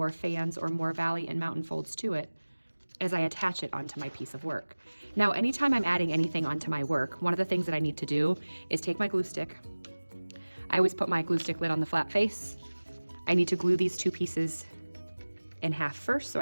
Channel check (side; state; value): both; inverted; correlation -1.00